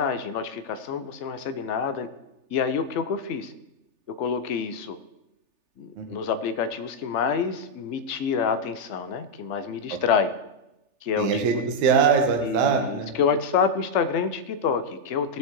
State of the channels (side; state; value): left; late; 3.4 ms